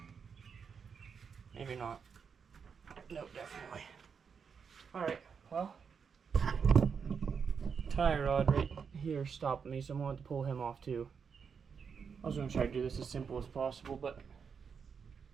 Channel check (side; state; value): left; quieter; 6.3 dB